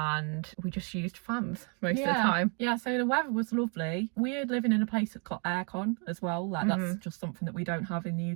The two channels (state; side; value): quieter; left; 36.9 dB